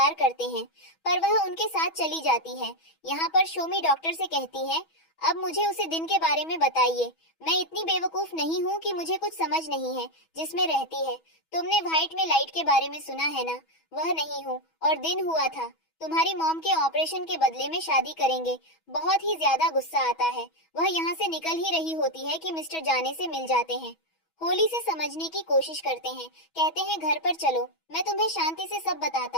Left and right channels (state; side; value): late; right; 6.2 ms